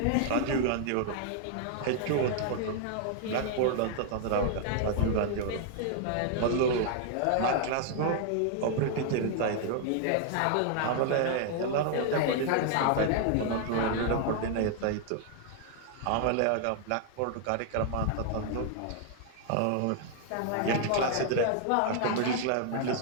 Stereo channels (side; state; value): both; different; correlation 0.00